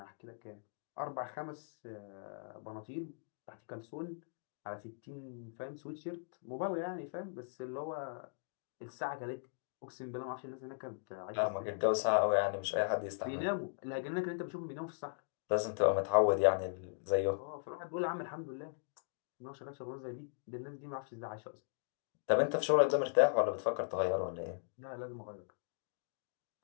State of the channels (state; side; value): silent; right; digital silence